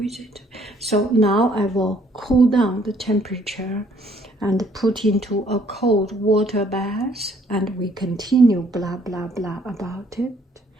it. So now I will cool down the temperature and put into a cold water bath, and we continue blah blah blah about it.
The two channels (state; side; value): normal; both; correlation 0.64